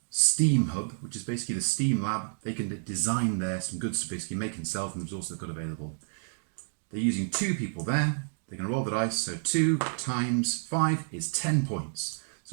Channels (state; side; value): silent; left; digital silence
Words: Steam hub, which is basically the Steam lab. They can design there some goods to basically make and sell from the resources they've got available. They're using 2 people there. They're going to roll the dice, so 2 times 5 is 10 points.